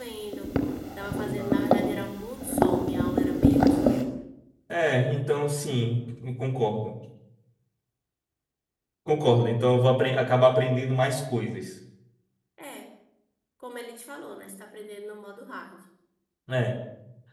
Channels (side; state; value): both; identical; correlation 1.00